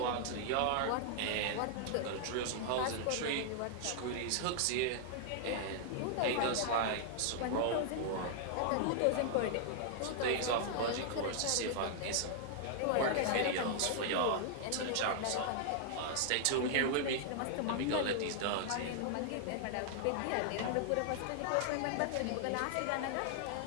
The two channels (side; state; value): both; different; correlation -0.01